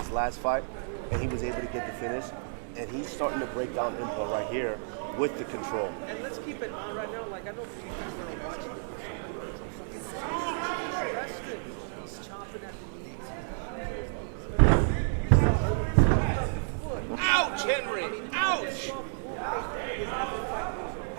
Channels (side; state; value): left; silent; 57 dB below the other